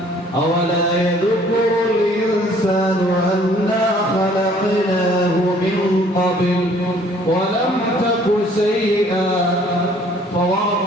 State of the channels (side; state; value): both; normal; correlation 0.58